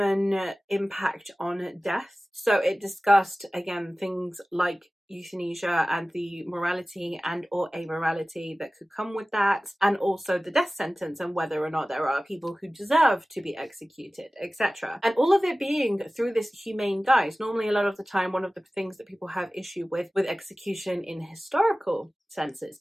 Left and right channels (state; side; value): normal; both; correlation 0.97